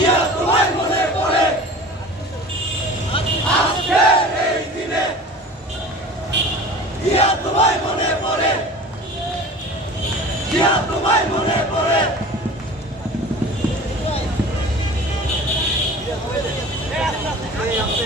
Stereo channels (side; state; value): both; normal; correlation 0.39